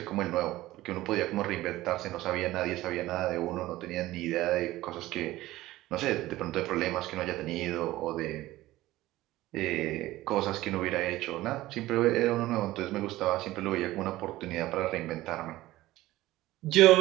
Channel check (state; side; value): quieter; left; 16.8 dB